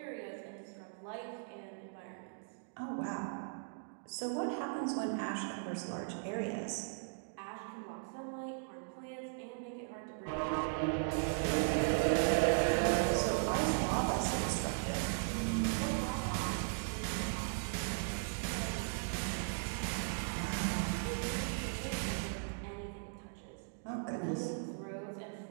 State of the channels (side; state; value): left; silent; digital silence